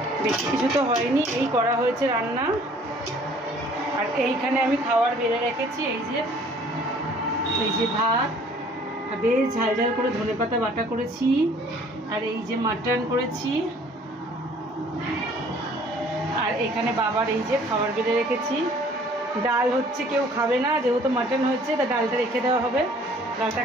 বেশি কিছু তো হয়নি, এই করা হয়েছে রান্না। আর এইখানে আমি খাবার বেড়ে রেখেছি, এই যে ভাত, বেশ ঝাল করে ধনেপাতা বাটা করেছি, আর এই যে মাটন করেছি, আর এখানে বাবার এই যে খাবার বেড়ে রেখেছি। ডাল হচ্ছে কেউ খাবে না, যেহেতু মাটন হচ্ছে তা ডালটা রেখে দেওয়া হবে, ডালটা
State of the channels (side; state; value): both; normal; correlation 0.55